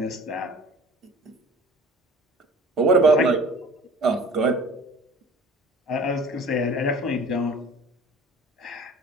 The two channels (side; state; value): both; normal; correlation 0.44